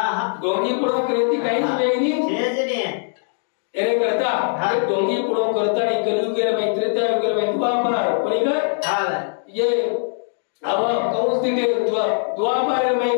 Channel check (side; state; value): right; silent; 65 dB below the other